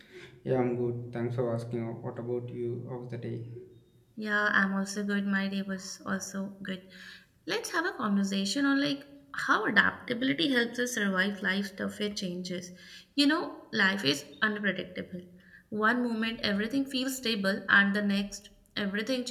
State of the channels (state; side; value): identical; both; correlation 1.00